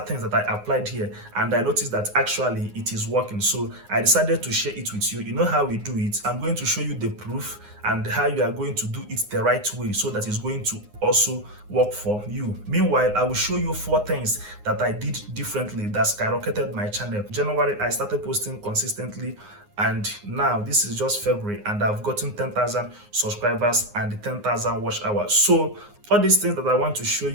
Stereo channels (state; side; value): late; left; 9.6 ms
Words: things that I applied here, and I noticed that actually it is working. So I decided to share it with you. You know how we do it. I'm going to show you the proof and how you are going to do it the right way so that it's going to also work for you. Meanwhile, I will show you 4 things that I did differently that skyrocketed my channel. January, I started posting consistently, and now this is just February, and I've gotten 10,000 subscribers and 10,000 watch hours. So all these things that I want to show